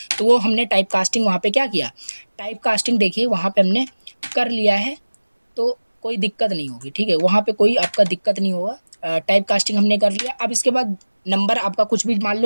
तो वो हमने टाइप कास्टिंग वहाँ पर क्या किया, टाइप कास्टिंग देखिए वहाँ पर हमने कर लिया है, तो कोई दिक्कत नहीं होगी, ठीक है, वहाँ पे कोई आपका दिक्कत नहीं होगा। टाइप कास्टिंग हमने कर लिया। अब इसके बाद नंबर आपका कुछ भी मान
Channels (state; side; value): inverted; both; correlation -1.00